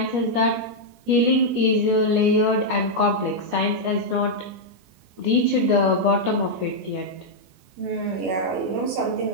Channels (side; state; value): left; late; 21 ms